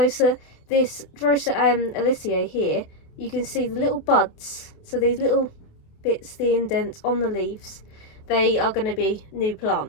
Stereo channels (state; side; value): late; right; 28 ms